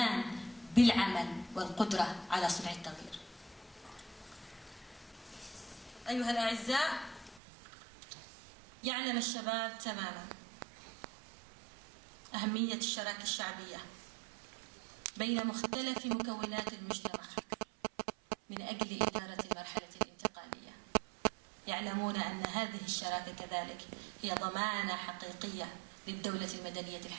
بالعمل والقدرة على صنع التغيير. أيها الأعزاء، يعلم الشباب تماما أهمية الشراكة الشعبية بين مختلف مكونات المجتمع من أجل إدارة المرحلة الانتقالية. يعلمون أن هذه الشراكة كذلك هي ضمانة حقيقية للدولة المدنية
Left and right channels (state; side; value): drops out; left; at 7.4 s